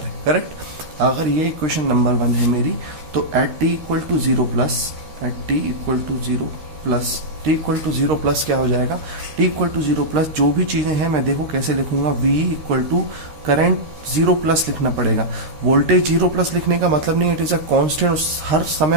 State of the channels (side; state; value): left; late; 13 ms